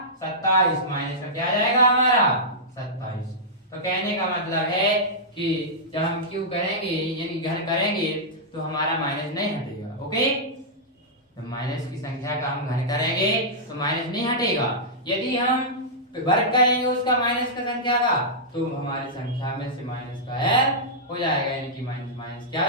27, माइनस का क्या आ जाएगा हमारा 27। तो कहने का मतलब है कि जब हम क्यू करेंगे यानी घन करेंगे तो हमारा माइनस नहीं हटेगा। ओके, तो माइनस की संख्या का हम घन करेंगे तो माइनस नहीं हटेगा। यदि हम वर्ग करेंगे उसका माइनस का संख्या का तो हमारी संख्या में से माइनस का हो जाएगा, यानी कि माइनस माइनस क्या हो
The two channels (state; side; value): normal; both; correlation -0.11